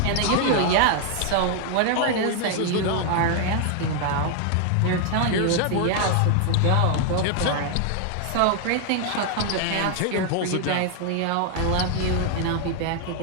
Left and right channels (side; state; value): both; different; correlation 0.00